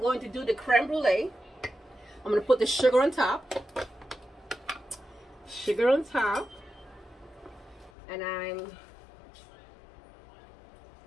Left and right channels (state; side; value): drops out; right; at 7.9 s